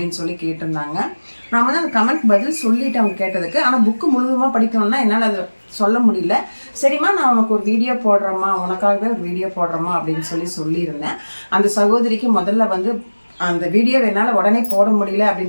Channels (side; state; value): both; inverted; correlation -1.00